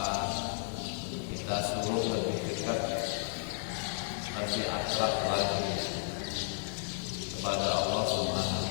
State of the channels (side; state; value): right; silent; 56 dB below the other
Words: kita suruh lebih dekat, lebih akrab lagi kepada Allah